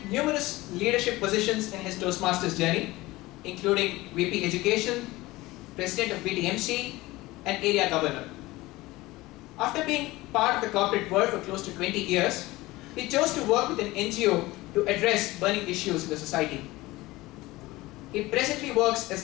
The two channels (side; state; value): right; quieter; 19.5 dB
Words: numerous leadership positions in his Toastmasters journey, including VP Education, President of BTMC, and Area Governor. After being part of the corporate world for close to 20 years, he chose to work with an NGO to address burning issues in the society. He presently works